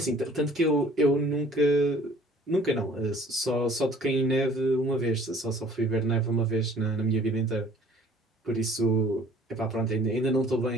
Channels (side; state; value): both; normal; correlation 0.53